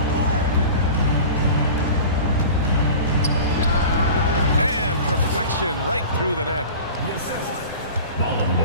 And perfection right through the net. Ballon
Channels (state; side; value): inverted; both; correlation -0.36